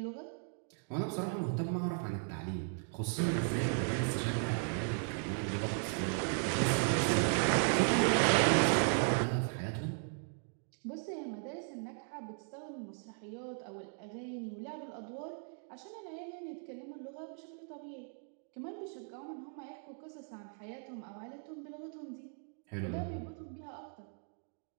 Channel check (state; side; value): silent; left; 53 dB below the other